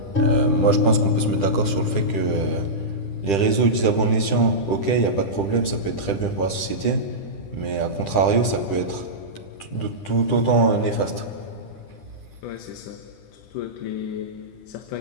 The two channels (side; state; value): right; late; 10 ms